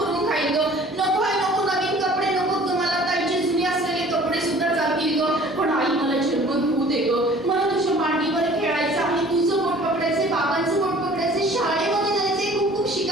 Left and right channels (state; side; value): normal; both; correlation 0.50